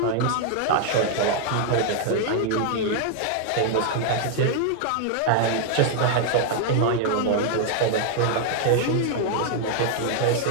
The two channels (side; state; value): both; different; correlation 0.00